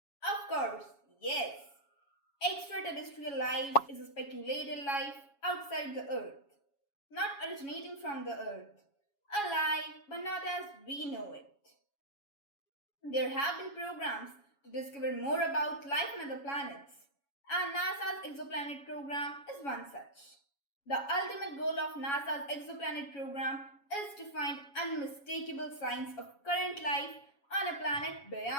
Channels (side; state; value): right; late; 7.2 ms